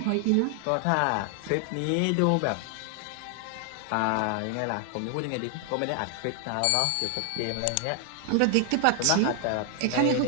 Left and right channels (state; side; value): different; both; correlation 0.00